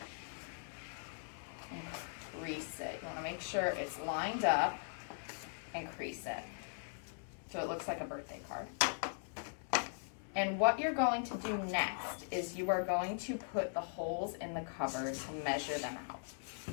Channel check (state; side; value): silent; right; 51 dB below the other